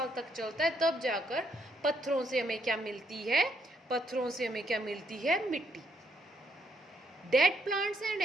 तक चलता है। तब जाकर पत्थरों से हमें क्या मिलती है? पत्थरों से हमें क्या मिलती है? मिट्टी। Dead plants and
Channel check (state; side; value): normal; both; correlation 0.74